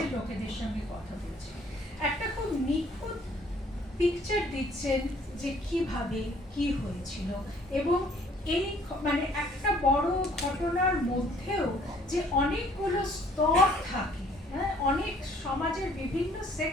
লোকেদের সঙ্গে কথা বলছে, একটা খুব নিখুঁত পিকচার দিচ্ছেন যে কিভাবে কি হয়েছিল, এবং এই মানে একটা বড় ঘটনার মধ্যেও যে অনেকগুলো স্তর থাকে, হ্যাঁ, অনেক সমাজের বিভিন্ন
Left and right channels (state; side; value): normal; both; correlation 0.59